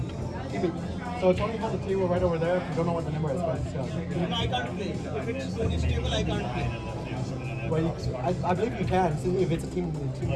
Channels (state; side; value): identical; both; correlation 1.00